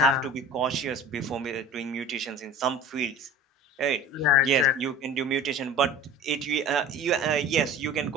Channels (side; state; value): both; normal; correlation 0.40